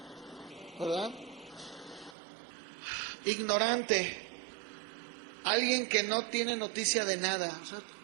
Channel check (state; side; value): drops out; left; at 2.1 s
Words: ¿verdad? Ignorante, alguien que no tiene noticia de nada, o sea,